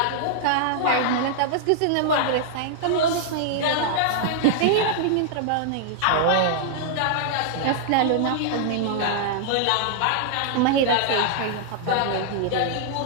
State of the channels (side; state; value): both; different; correlation -0.01